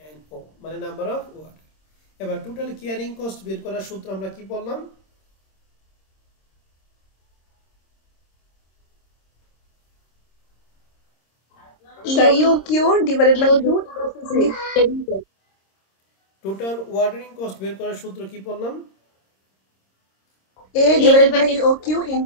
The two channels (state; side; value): late; right; 26 ms